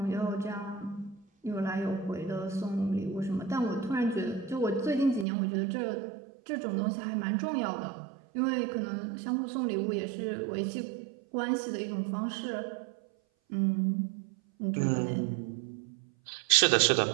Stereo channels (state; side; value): drops out; left; at 5.2 s